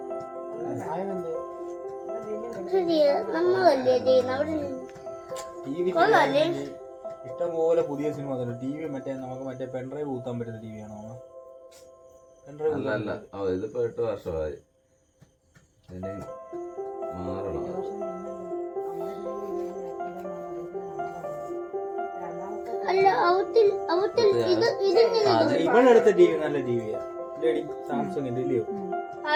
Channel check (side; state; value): both; identical; correlation 1.00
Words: ഇഷ്ടംപോലെ പുതിയ സിനിമ ടി വി മറ്റേ നമുക്ക് മറ്റേ പെൻഡ്രൈവ് കൂത്താൻ പറ്റുന്ന ടി വി ആണോ? അല്ല, ഇതിപ്പോ 8 വർഷമായി. ഇനി മാറണം. ഇവളെടുത്ത ടി വി നല്ല ടി വിയാ, സാംസങ്ങിന്റെ ഇല്ലയോ?